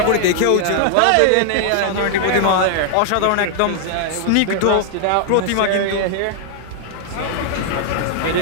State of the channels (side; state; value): both; different; correlation 0.00